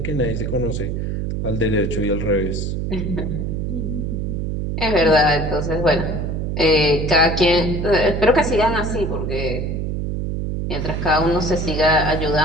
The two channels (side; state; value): right; noise; hum, 2 dB below the sound